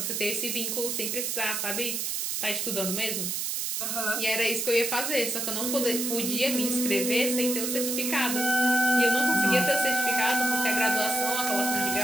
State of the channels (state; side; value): noise; right; hiss, 1 dB below the sound